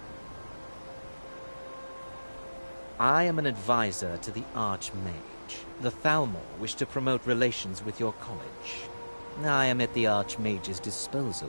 I am an advisor to the Archmage. The Thalmor wish to promote relations with your college. I am at the Archmage's disposal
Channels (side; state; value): both; inverted; correlation -1.00